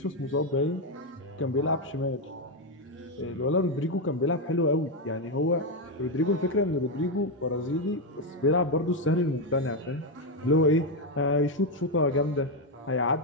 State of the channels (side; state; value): both; normal; correlation 0.05